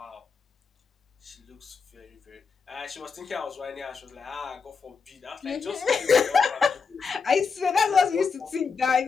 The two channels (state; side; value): quieter; right; 5.4 dB